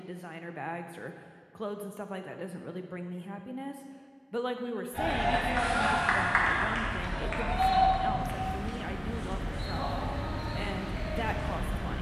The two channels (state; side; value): identical; both; correlation 1.00